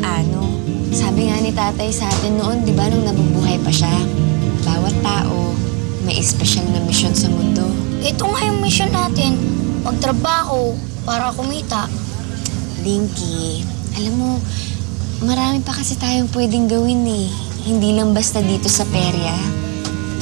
Sabi nga ni tatay sa atin noon, di ba, nung nabubuhay pa siya, bawat tao may espesyal na misyon sa mundo. Ito nga yung mission natin, magtrabaho para kumita. Dinky, alam mo, marami pa kasi tayong pwedeng gawin eh. Hindi lang basta dito sa perya.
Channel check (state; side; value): quieter; left; 31.7 dB